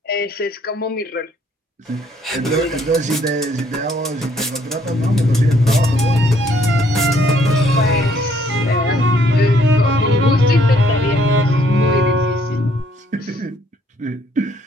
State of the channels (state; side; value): normal; both; correlation 0.66